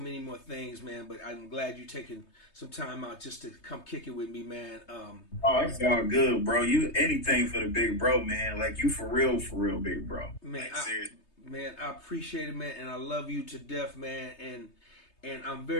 more things, man, but I'm glad you taking some time out just to come kick it with me, man. Oh, it's all good, bro. You anything for the big bro, man. Like you for real, big bro. Man, like, seriously. I appreciate it, man, and I love you to death, man. And I'm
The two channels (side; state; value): right; late; 3.3 ms